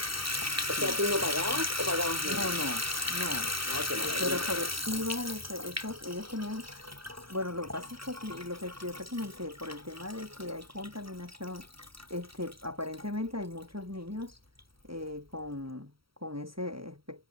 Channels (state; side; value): late; left; 0.75 ms